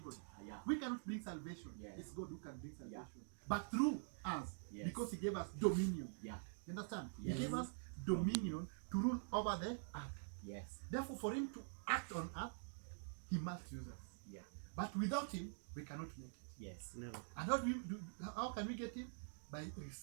Yeah. We cannot bring salvation. Yes. It's God who can bring salvation. Yeah. But through us, Yes. because He gave us dominion. Yeah. You understand? Yes. He gave us dominion to rule over the earth. Yes. Therefore, for Him to act on earth, He must use us. Yeah. But without Him, we cannot make it. Yes. Never. And how can we get Him? By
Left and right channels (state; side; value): silent; left; digital silence